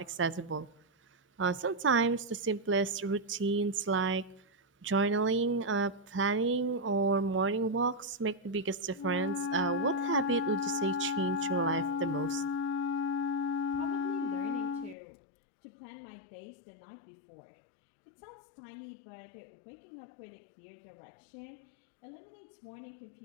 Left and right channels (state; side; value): drops out; right; at 15.0 s